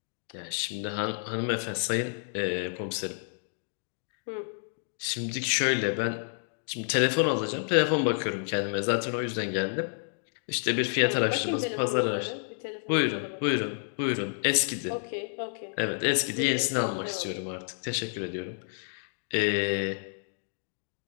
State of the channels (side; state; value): right; silent; digital silence